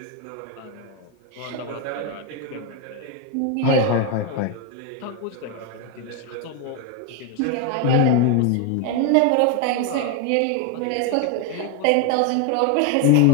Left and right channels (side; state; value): both; different; correlation 0.01